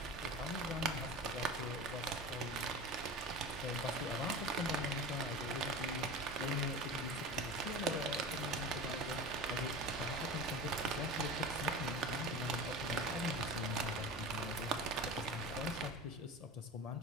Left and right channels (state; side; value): normal; both; correlation 0.32